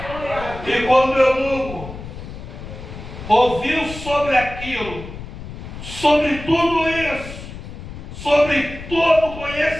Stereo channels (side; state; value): left; noise; rumble, 11 dB below the sound